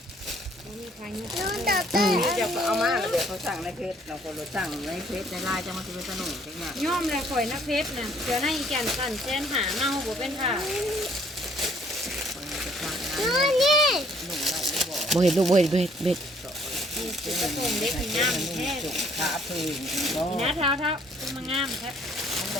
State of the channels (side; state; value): both; normal; correlation 0.62